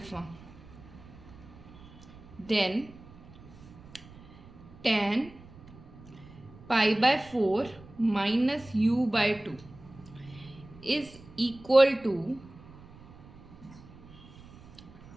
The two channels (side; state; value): right; noise; rumble, 20 dB below the sound